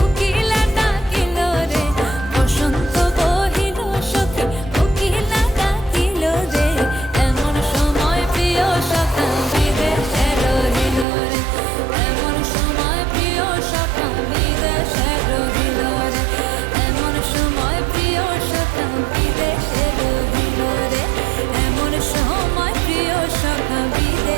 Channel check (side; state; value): left; drops out; at 11.1 s